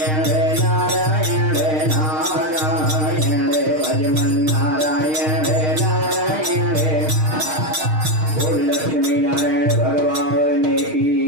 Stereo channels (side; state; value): left; late; 6.5 ms